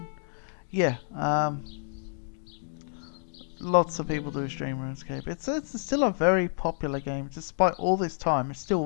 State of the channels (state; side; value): silent; right; digital silence